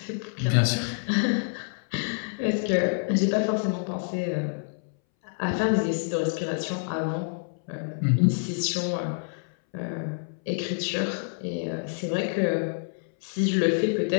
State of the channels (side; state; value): right; silent; 60 dB below the other